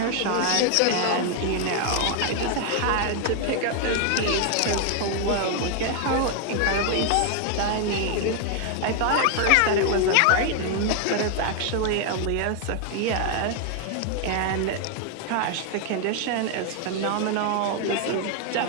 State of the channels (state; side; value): different; both; correlation 0.00